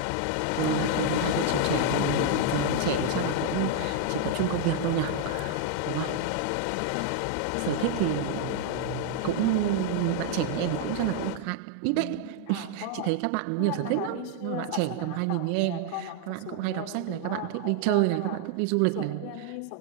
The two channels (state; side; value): different; both; correlation 0.00